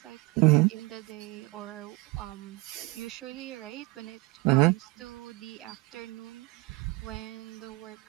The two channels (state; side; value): quieter; left; 22.3 dB